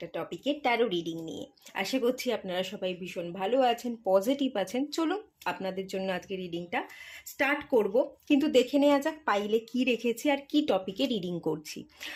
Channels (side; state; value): both; identical; correlation 1.00